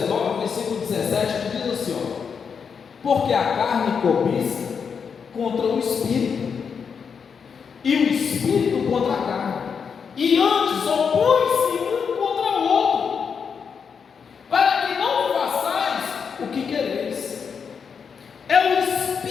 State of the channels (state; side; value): quieter; right; 6.4 dB